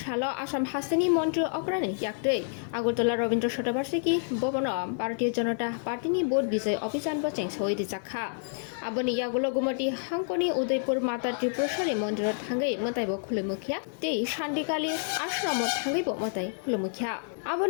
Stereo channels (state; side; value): silent; right; digital silence